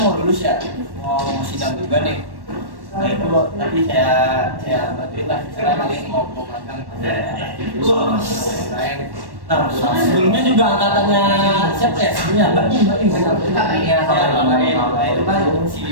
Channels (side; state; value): left; late; 1.1 ms